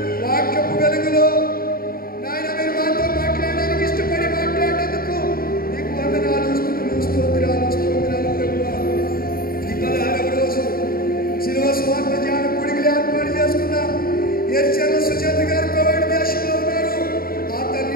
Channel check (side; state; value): right; late; 0.43 ms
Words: వాక్యపు వెలుగులో నాయన మీరు మాతో మాట్లాడడానికి ఇష్టపడి మాట్లాడేందుకు నీకు వందనాలు స్తుతులు స్తోత్రాలు స్తోత్రాలు ప్రభువా. ఈ 16వ రోజు శిలువ స్వార్థ ధ్యాన కూడికలు ఏర్పాటు చేసుకున్న ఎర్చల సుజాత గారు కోవిడ్ దేశంలో ఉన్నారు. ఆ